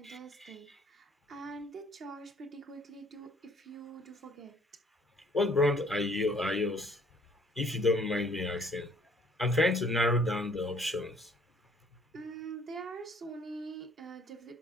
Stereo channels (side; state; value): both; normal; correlation 0.60